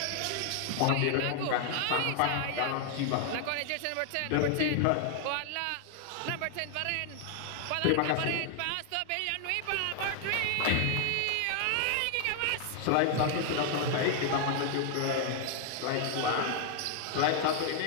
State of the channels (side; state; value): both; different; correlation 0.00